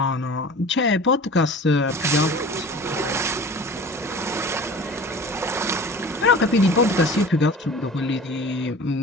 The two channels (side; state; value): both; normal; correlation 0.40